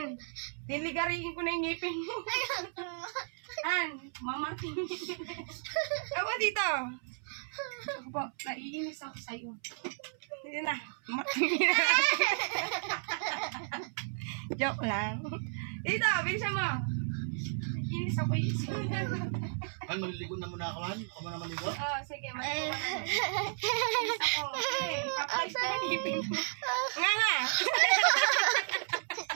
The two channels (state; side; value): silent; left; 56 dB below the other